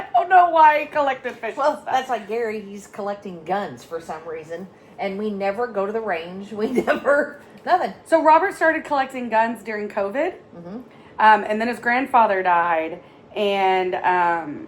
don't know why he collected fishing stuff. That's like Gary. He's collecting guns for some reason, and we never go to the range. We never, nothing. So, Robert started collecting guns during COVID, and then his grandfather died, and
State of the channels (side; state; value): both; identical; correlation 1.00